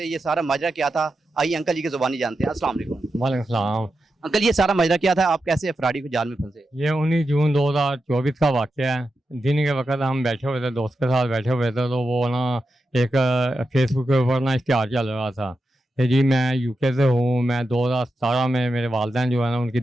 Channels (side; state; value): both; normal; correlation 0.89